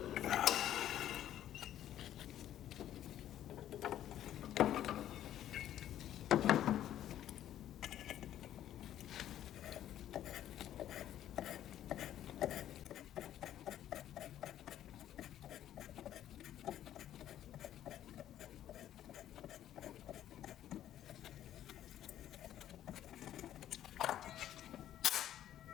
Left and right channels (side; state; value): right; quieter; 11.7 dB